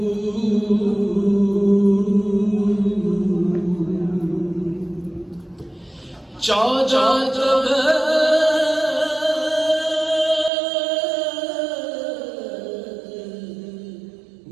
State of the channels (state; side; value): drops out; left; at 10.5 s